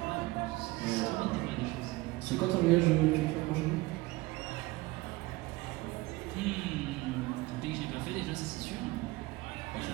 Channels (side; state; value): left; quieter; 20.8 dB